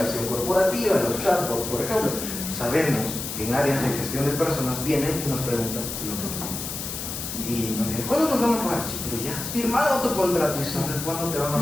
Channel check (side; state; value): left; noise; hiss, 6 dB below the sound